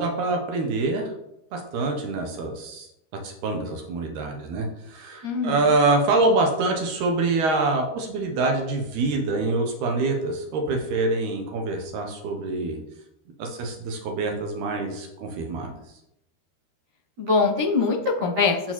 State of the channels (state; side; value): late; left; 13 ms